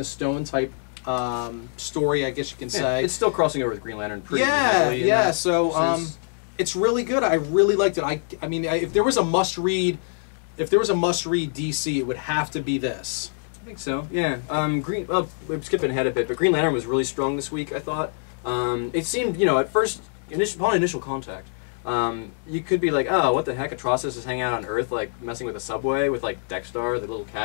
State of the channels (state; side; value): silent; right; digital silence